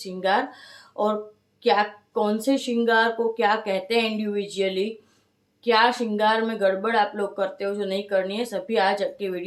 और क्या कौन से श्रृंगार को क्या कहते हैं इंडिविजुअली, क्या श्रृंगार में गड़बड़ आप लोग करते हो जो नहीं करनी है, सभी आज के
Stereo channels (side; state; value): both; identical; correlation 1.00